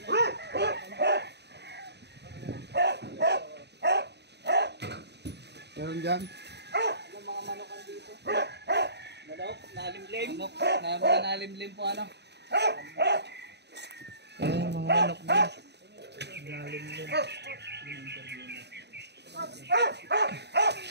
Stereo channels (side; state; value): left; late; 0.49 ms